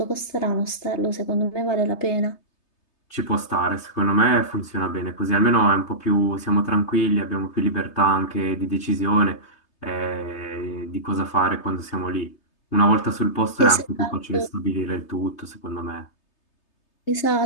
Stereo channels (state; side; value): late; right; 3.3 ms